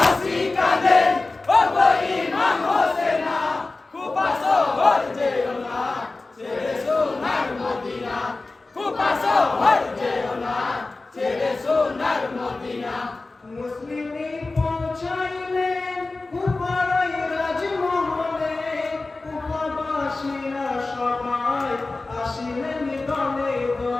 কাঁদে ওগো ইমাম হোসেনা কুফা শহর যেও না ছেড়ে সোনার মদিনা কুফা শহর যেও না ছেড়ে সোনার মদিনা মুসলিমি পৌঁছাইলেন কুফার ওই রাজমহলে কুফাবাসীরা সবাই আসিলেন দলে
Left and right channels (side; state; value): right; quieter; 3.4 dB